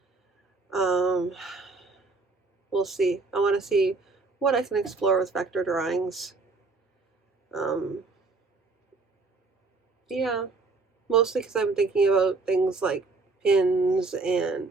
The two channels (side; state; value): left; quieter; 3.8 dB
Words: We'll see. I want to see what I can explore with vector drawings. Yeah, mostly because I'm thinking about things like pins and